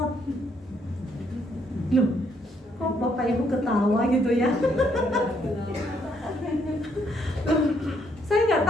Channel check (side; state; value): both; normal; correlation 0.71